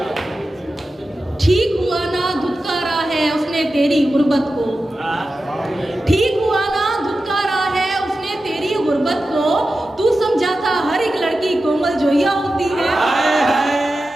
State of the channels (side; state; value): both; normal; correlation 0.93